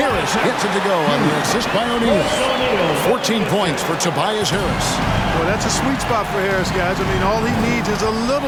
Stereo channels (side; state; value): both; identical; correlation 1.00